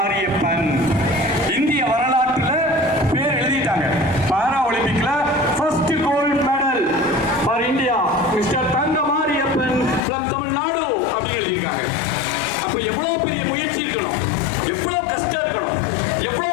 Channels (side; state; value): right; drops out; at 10.0 s